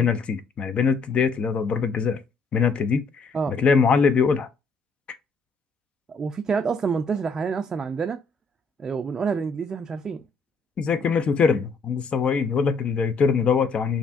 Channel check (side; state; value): right; quieter; 3.7 dB